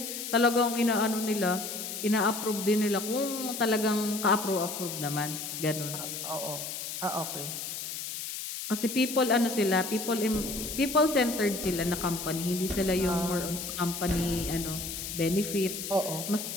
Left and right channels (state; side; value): noise; left; hiss, 6 dB below the sound